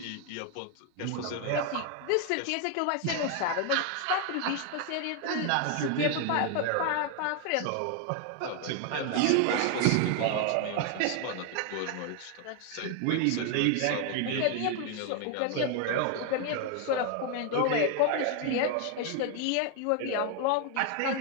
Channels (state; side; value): different; both; correlation 0.01